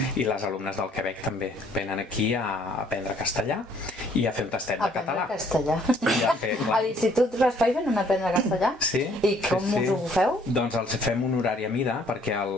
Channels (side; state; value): both; normal; correlation 0.62